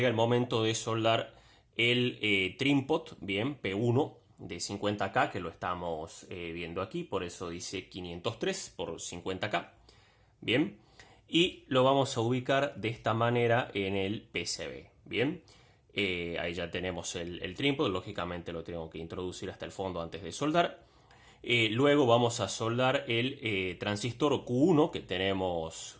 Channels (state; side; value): identical; both; correlation 1.00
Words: el momento de soldar el trim-pot, bien, P1 de 50K, que lo estamos viendo aquí, por eso dice 503 por 50K. Bien, y lo vamos a ubicar de esta manera en el PCB. Bien, ahí ya tenemos el trim-pot, lógicamente lo tengo que introducir hasta el fondo antes de soldar. Luego vamos a soldar el transistor Q1 que tenemos